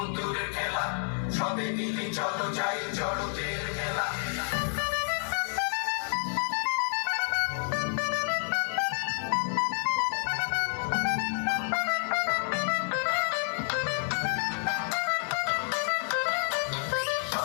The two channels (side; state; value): right; silent; 58 dB below the other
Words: খেলা সবে মিলি চলো যাই জড়তের খেলা